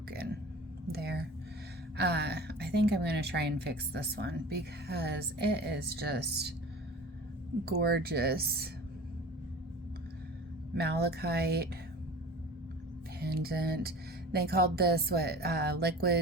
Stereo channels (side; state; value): both; normal; correlation 0.39